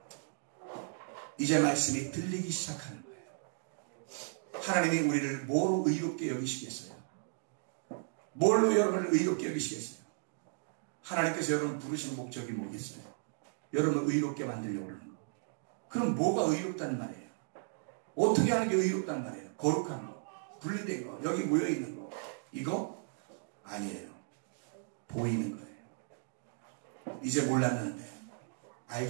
이제 말씀이 들리기 시작하는 거예요. 하나님이 우리를 뭐로 의롭게 여기시겠어요? 뭘로 여러분을 의롭게 여기시겠어요? 하나님께서 여러분을 부르신 목적이 뭐겠어요? 여러분을 의롭게 만들려고 하는 거. 그럼 뭐가 의롭다는 말이에요? 어떻게 하는 게 의롭다는 말이에요? 거룩한 거, 분리된 거, 여기 모여있는 거. 이거 아니에요. 보이는 거예요. 이제 몰랐는데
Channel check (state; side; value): silent; left; digital silence